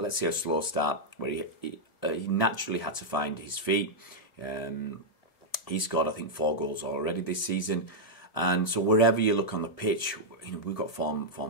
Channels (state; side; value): late; right; 1.7 ms